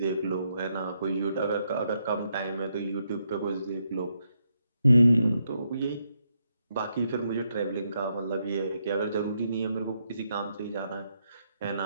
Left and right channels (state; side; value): inverted; both; correlation -0.79